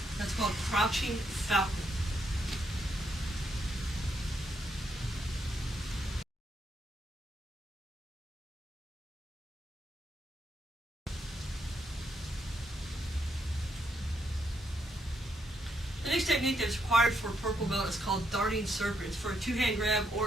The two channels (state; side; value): normal; both; correlation 0.78